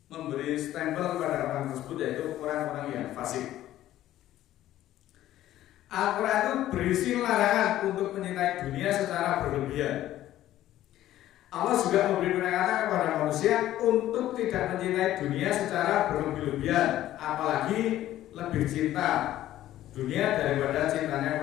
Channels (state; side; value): quieter; right; 13.6 dB